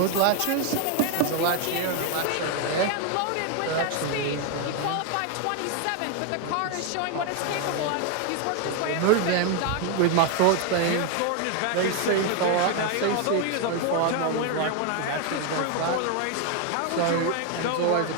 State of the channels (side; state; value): both; different; correlation 0.01